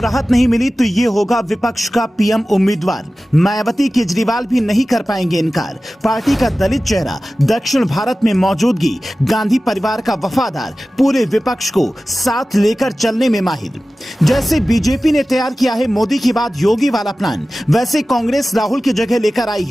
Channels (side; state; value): both; normal; correlation 0.96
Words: नहीं मिली तो ये होगा विपक्ष का पीएम उम्मीदवार। मायावती केजरीवाल भी नहीं कर पाएंगे इनकार। पार्टी का दलित चेहरा, दक्षिण भारत में मौजूदगी, गांधी परिवार का वफादार, पूरे विपक्ष को साथ लेकर चलने में माहिर। जैसे बीजेपी ने तैयार किया है मोदी की बाद योगी वाला प्लान, वैसे कांग्रेस राहुल की जगह लेकर आई